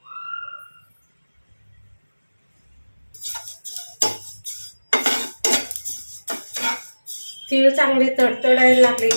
तीळ चांगले तडतडायला लागले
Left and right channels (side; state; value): both; inverted; correlation -1.00